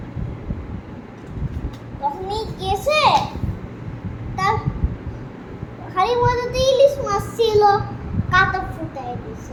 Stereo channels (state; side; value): identical; both; correlation 1.00